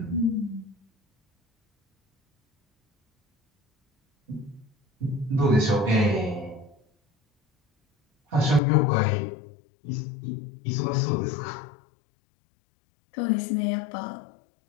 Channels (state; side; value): drops out; right; at 8.6 s